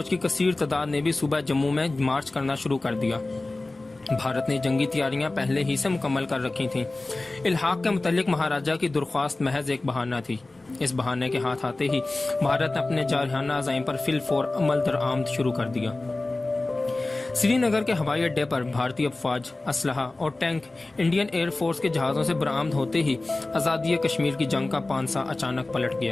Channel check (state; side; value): quieter; right; 3.0 dB